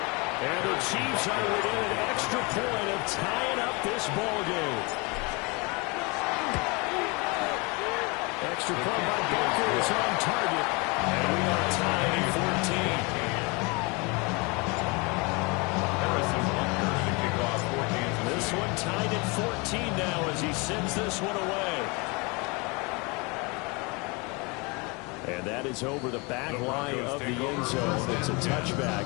And the Chiefs are within an extra point of tying up this ball game. extra point by Baker is on target. And we are tied at 14. This one tied at 14 now as he sends this one away. And that is over the back line of the end zone. It's a touchback.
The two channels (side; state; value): right; quieter; 28.6 dB